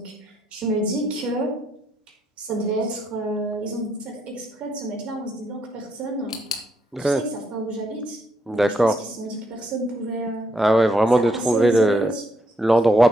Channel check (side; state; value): both; normal; correlation 0.76